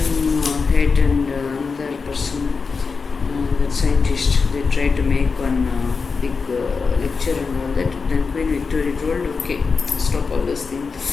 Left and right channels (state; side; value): quieter; right; 4.9 dB